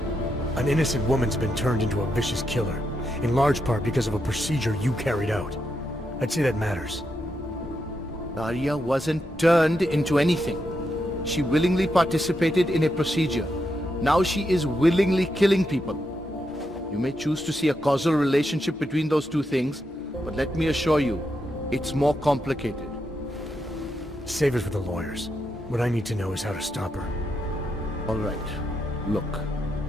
An innocent woman's been turned into a vicious killer, in large part because of a procedure you carried out. I'd say that matters. Daria wasn't turned into anything. She willingly participated in a procedure. Now she is willingly killing people. You may choose to see a causal relationship between those two things, but let me assure you, it's more complicated. Save it for the lawyers. What I need to know is how to stop her. All right. Look,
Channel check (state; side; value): normal; both; correlation 0.83